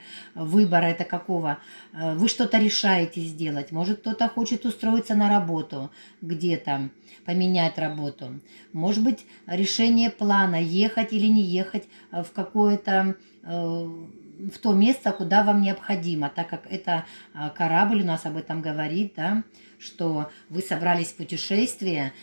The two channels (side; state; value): both; inverted; correlation -1.00